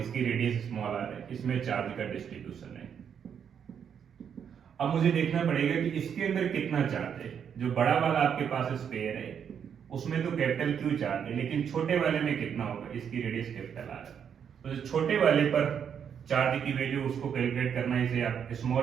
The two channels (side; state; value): left; quieter; 7.9 dB